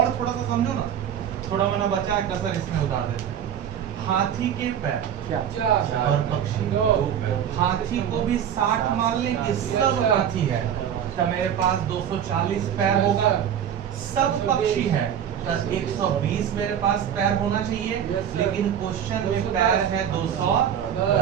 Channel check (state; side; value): quieter; left; 9.2 dB